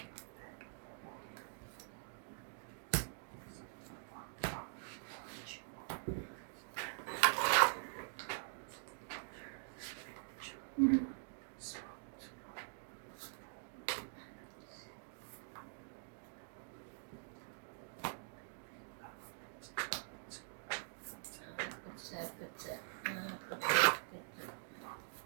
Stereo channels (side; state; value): left; silent; digital silence